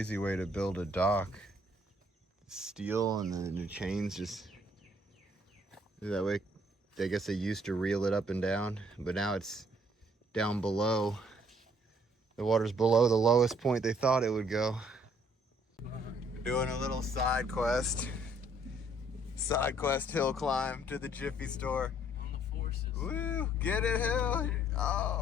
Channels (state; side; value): normal; both; correlation 0.63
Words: way to build a dock. Steel and then the chains just, that way, I guess they used to reel it up and down, but now it's down below. The water's below the lowest point they thought it would go. Doing a little side quest hill climb to the Jiffy store. On the forces. Woo, get it, Hill.